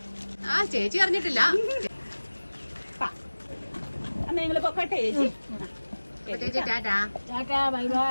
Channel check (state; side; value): inverted; both; correlation -1.00